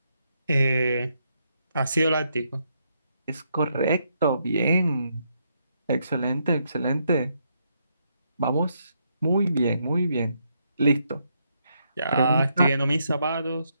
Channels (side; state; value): both; inverted; correlation -0.78